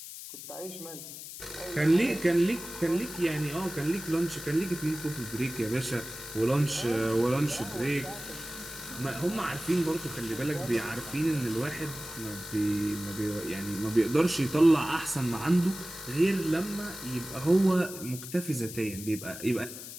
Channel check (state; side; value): noise; left; hiss, 11 dB below the sound